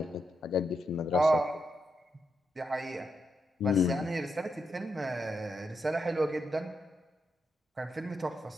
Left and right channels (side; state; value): both; normal; correlation 0.83